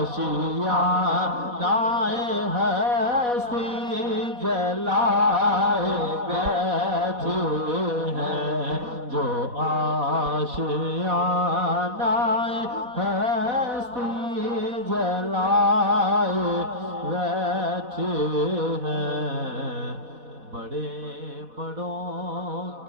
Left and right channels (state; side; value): late; left; 4.1 ms